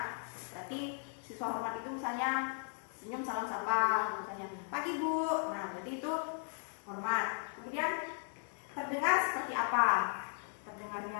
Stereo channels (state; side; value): silent; right; 53 dB below the other